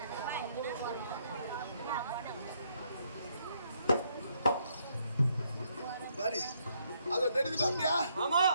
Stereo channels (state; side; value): inverted; both; correlation -0.72